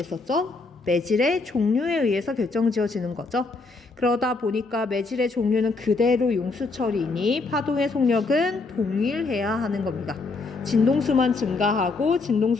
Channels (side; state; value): right; quieter; 3.8 dB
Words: 매질의 종류에 의해서 결정지어지는 거죠. 그러다 보니까 매질의 종류는 그대로 용수철이니 파동의 속력은 동일해야 하는 겁니다. 진동수만 증가하고